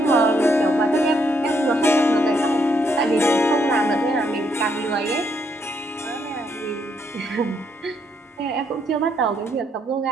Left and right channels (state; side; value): normal; both; correlation 0.74